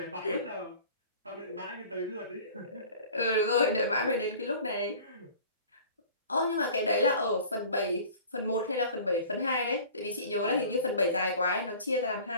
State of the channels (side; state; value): both; inverted; correlation -0.44